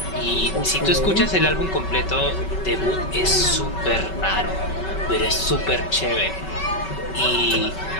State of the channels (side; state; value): right; late; 5.3 ms